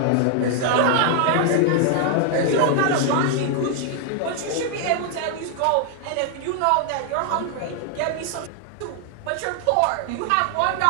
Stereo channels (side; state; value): both; different; correlation 0.00